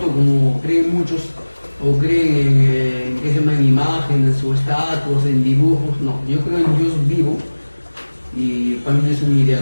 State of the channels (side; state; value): both; inverted; correlation -1.00